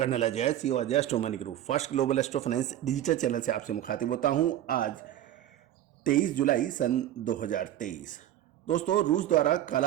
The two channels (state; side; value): quieter; left; 12.4 dB